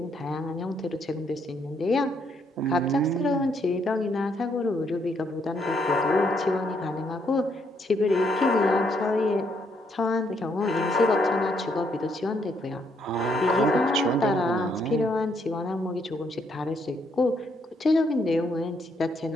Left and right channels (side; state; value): both; normal; correlation 0.73